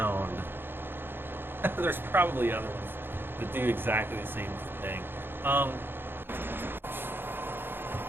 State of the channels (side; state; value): left; late; 0.10 ms